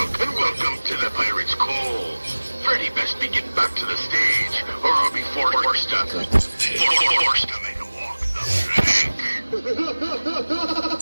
to the Pirate's Cove. Freddy best be getting back to the stage, or I'll be forced to make a walk the plank.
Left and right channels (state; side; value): inverted; both; correlation -1.00